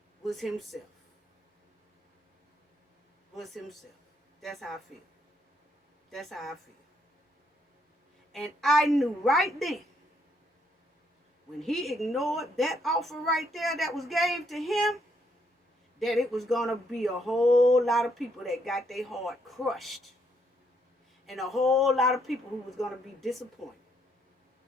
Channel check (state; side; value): normal; both; correlation 0.73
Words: was himself. Was himself. That's how I feel. That's how I feel. And I knew right then, when he ignored that offer right there that was gave to him, that it was going to be a whole lot of people that got their heart crushed. And a whole lot of people who was going to be disappointed.